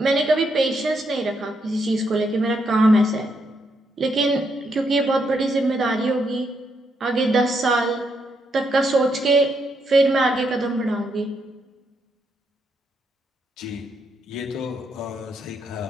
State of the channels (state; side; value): normal; both; correlation 0.78